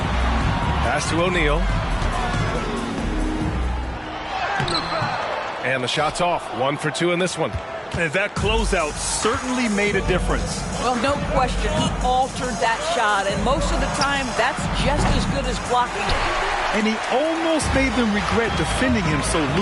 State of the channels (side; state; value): both; identical; correlation 1.00